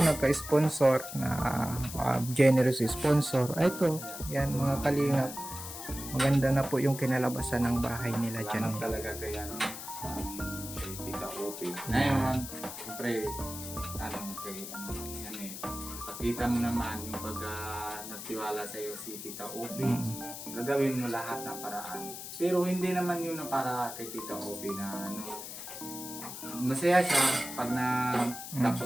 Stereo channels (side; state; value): left; noise; hiss, 9 dB below the sound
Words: nagka-sponsor na generous sponsor. Ito, yan mga Kalingap. Maganda na po yung kinalabasan ng bahay nila dyan. Salamat talaga kay kay Tita Opi. Ngayon, siyempre, pakita mo naman yung pag nagtiwala sa iyo si Tita Opi. Gagawin mo lahat ng paraan. Pero hindi naman yun na para kay Tita Opi na masaya siya pag